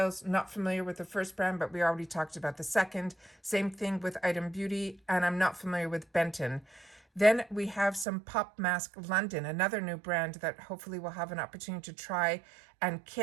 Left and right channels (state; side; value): drops out; left; at 8.1 s